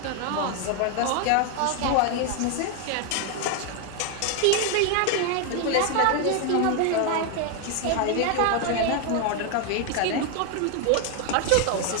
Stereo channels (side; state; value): both; different; correlation 0.01